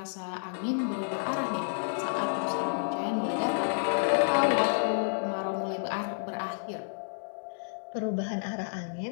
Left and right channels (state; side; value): silent; right; digital silence